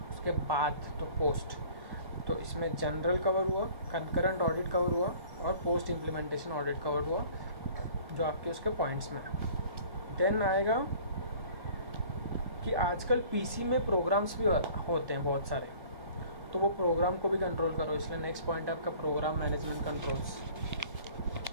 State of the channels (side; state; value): left; late; 1.5 ms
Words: उसके बाद तो पोस्ट। तो इसमें जनरल कवर हुआ, कंकरेंट ऑडिट कवर हुआ और पोस्ट इम्प्लीमेंटेशन ऑडिट कवर हुआ, जो आपके उसके पॉइंट्स में है। देन आएगा कि आजकल पीसी में प्रोग्राम्स भी होते हैं बहुत सारे, तो वो प्रोग्राम को भी कंट्रोल करो, इसलिए नेक्स्ट पॉइंट है आपका program management controls.